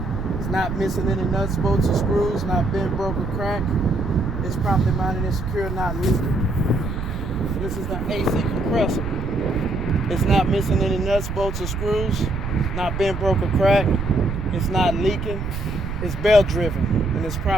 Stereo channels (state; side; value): noise; right; rumble, 6 dB below the sound